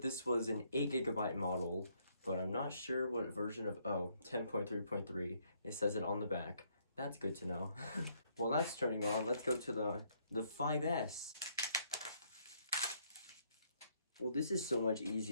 this was an 8GB model, but I'm not sure what version of, 10.3.3. It says it on the back. That's good to know. Well, that's turning on. Let's go to the 5S. Well, this is so much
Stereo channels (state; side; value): inverted; both; correlation -0.70